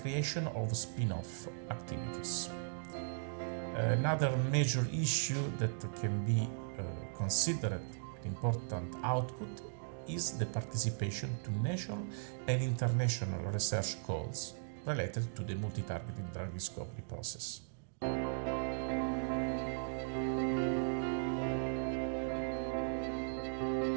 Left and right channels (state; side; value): silent; left; digital silence